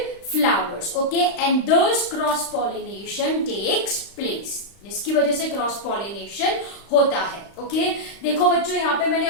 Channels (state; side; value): late; right; 35 ms